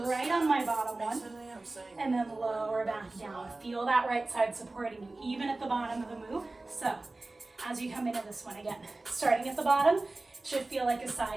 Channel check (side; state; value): left; quieter; 3.1 dB